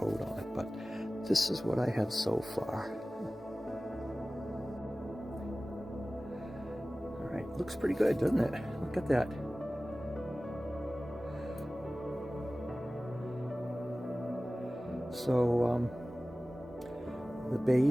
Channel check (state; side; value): normal; both; correlation 0.97